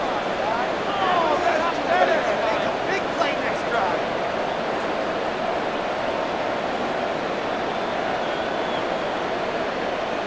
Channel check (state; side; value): noise; right; rumble, 26 dB below the sound